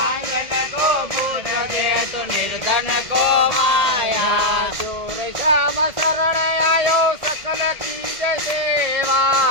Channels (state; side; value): late; left; 1.8 ms